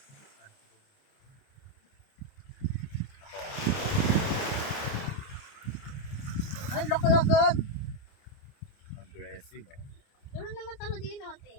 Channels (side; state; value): right; late; 29 ms